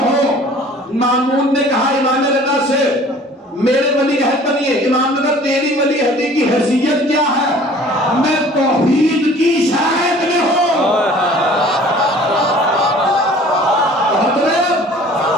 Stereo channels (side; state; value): both; normal; correlation 0.49